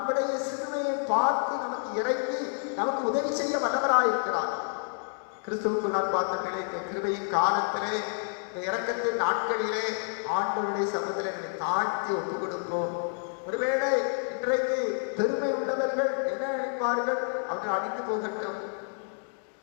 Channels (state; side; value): silent; right; 57 dB below the other